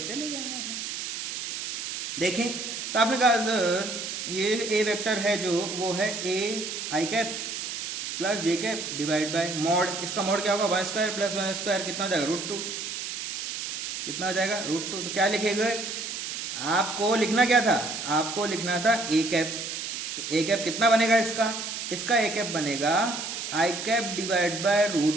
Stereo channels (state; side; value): noise; right; hiss, 5 dB below the sound